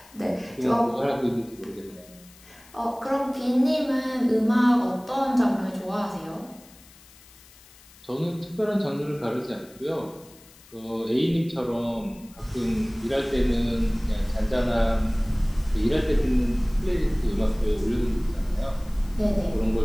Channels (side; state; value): left; noise; hiss, 24 dB below the sound